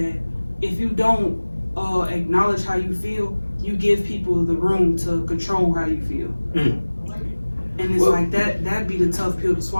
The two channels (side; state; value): both; inverted; correlation -1.00